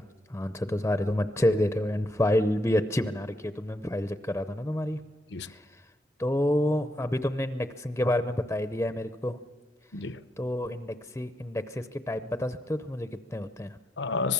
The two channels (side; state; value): both; normal; correlation 0.81